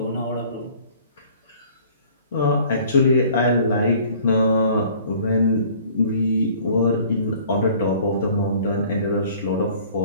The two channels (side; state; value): both; inverted; correlation -0.53